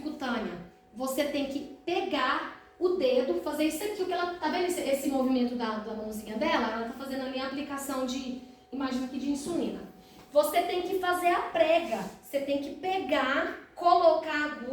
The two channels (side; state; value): both; identical; correlation 1.00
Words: Você tem que pegar o dedo, fazer isso aqui, o que ela tá vendo esse movimento da mãozinha dela? Ela tá fazendo ali a aplicação de, imagina aqui, de insulina. Você tem que fazer a prega, você tem que pegar, colocar a